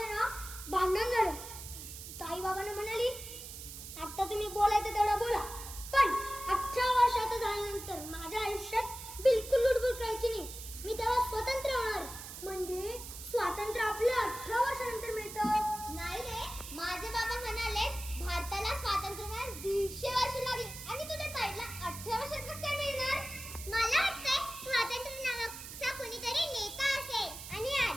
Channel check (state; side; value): noise; right; hiss, 11 dB below the sound